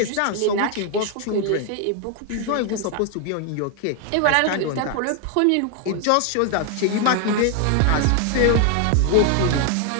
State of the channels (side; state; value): both; different; correlation 0.00